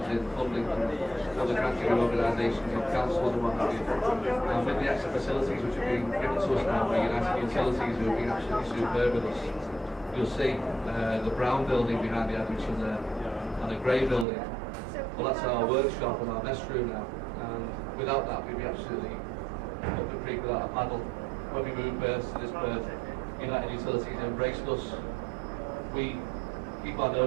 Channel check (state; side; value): drops out; left; at 14.2 s